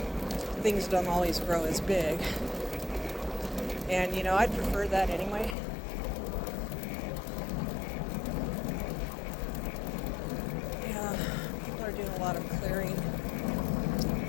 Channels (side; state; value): right; drops out; at 5.6 s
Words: Things don't always grow as big. And, you know, I'd prefer that anyway. Yeah, people are doing a lot of clearing